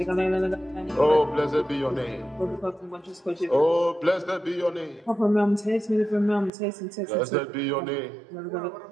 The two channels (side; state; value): left; drops out; at 6.5 s